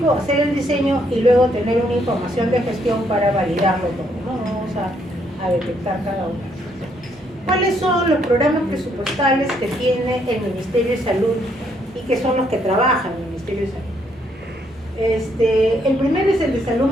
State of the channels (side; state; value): both; normal; correlation 0.71